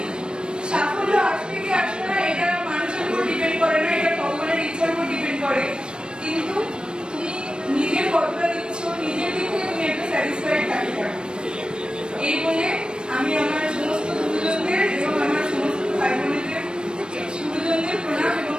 সাফল্য আসবে কি আসবে না এটা মানুষের উপর ডিপেন্ড করে না, এটা ভগবানের ইচ্ছার উপর ডিপেন্ড করে। কিন্তু তুমি নিজের কতটা দিচ্ছ, নিজের দিক থেকে তুমি একটা স্যাটিসফাইড থাকতে পারো। এই বলে আমি আমার সমস্ত গুরুজনদের এবং আমার সমস্ত ভাই বোনেদের গুরুজনদের প্রণাম এবং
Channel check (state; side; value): late; left; 0.053 ms